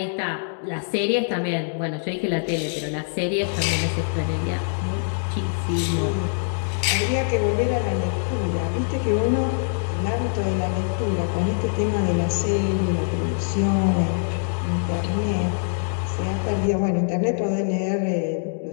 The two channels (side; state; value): right; silent; digital silence